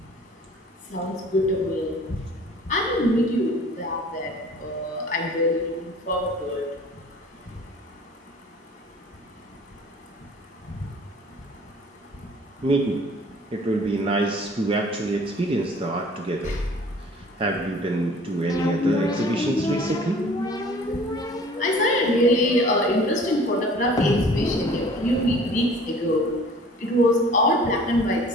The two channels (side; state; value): both; normal; correlation 0.49